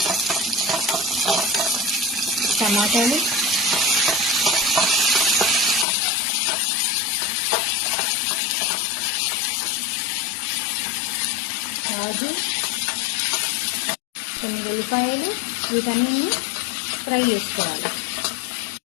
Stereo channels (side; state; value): right; drops out; at 5.9 s